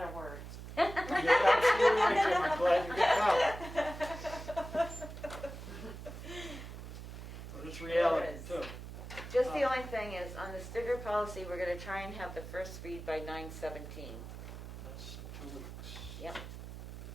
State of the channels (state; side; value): noise; right; hum, 11 dB below the sound